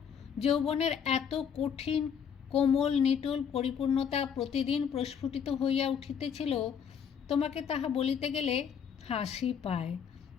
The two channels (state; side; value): quieter; right; 7.4 dB